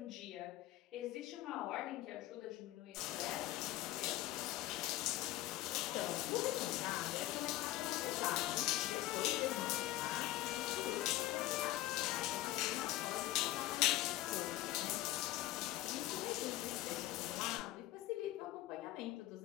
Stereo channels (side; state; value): right; quieter; 16.0 dB